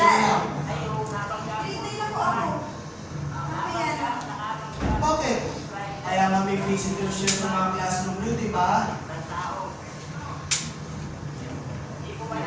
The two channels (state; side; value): identical; both; correlation 1.00